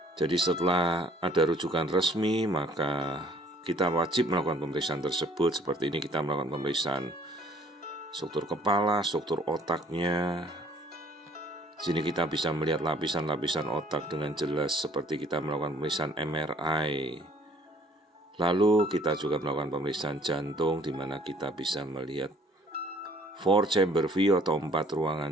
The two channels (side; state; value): both; normal; correlation 0.58